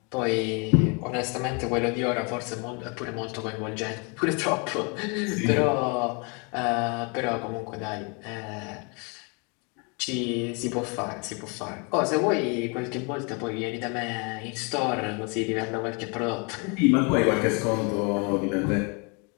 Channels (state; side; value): quieter; right; 33.0 dB